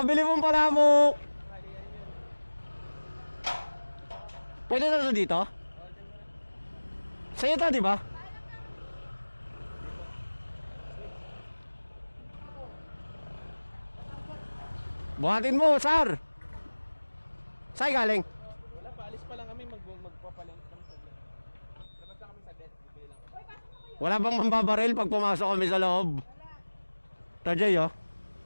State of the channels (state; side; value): inverted; both; correlation -1.00